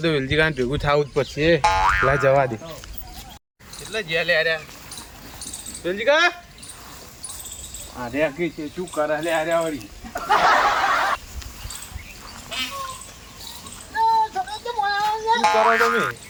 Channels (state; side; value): identical; both; correlation 1.00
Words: તો વેલજી કાન ભેગું થવું જ પડશે. લા જવા દે એટલે જેલે આર્યા વેલજી કા આર્યા કે છે શું કરે લે આર્યા વળી શું કરો તમે?